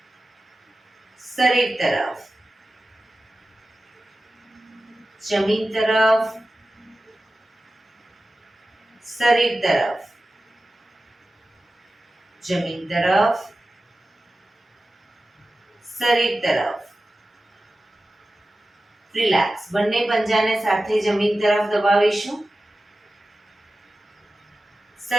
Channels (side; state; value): both; normal; correlation 0.94